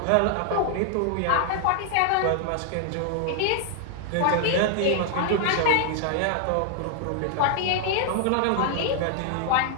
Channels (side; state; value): both; different; correlation 0.00